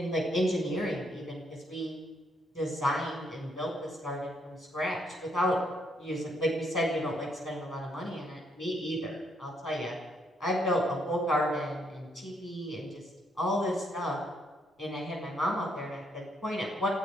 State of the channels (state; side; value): normal; both; correlation 0.73